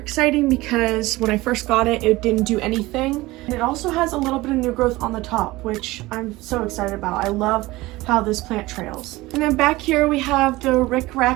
because when I first got it, it didn't do anything. And it also has a little bit of new growth on the top, which I'm so excited about. I love how this plant trails. And then back here we have the Rick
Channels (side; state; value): left; quieter; 19.7 dB